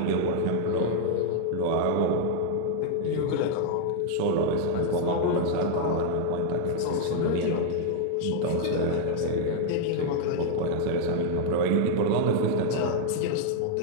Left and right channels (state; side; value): different; both; correlation 0.00